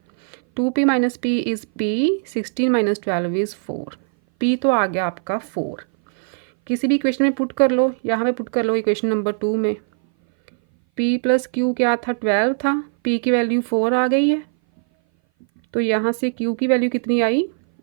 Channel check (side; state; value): left; silent; 59 dB below the other